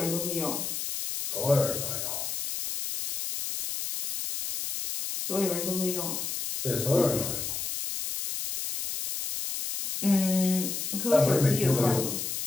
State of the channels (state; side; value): noise; left; hiss, 4 dB below the sound